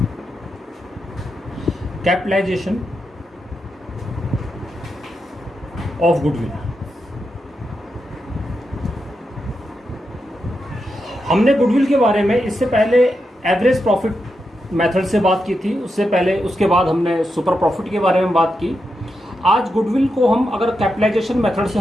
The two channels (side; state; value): both; normal; correlation 0.86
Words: Capitalization of goodwill. हमने गुडविल के बारे में इससे पहले एवरेज प्रॉफिट मेथड से बात की थी, उससे पहले उसके बाद हमने सुपर प्रॉफिट के बारे में बात की। आज गुडविल को हम अगर कैपिटलाइजेशन मेथड से